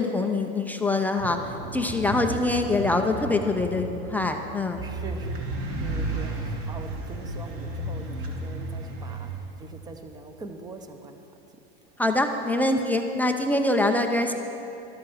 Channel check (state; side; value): normal; both; correlation 0.56